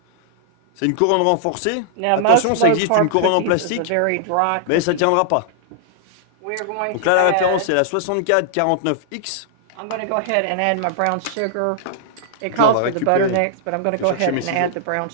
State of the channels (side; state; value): both; different; correlation -0.01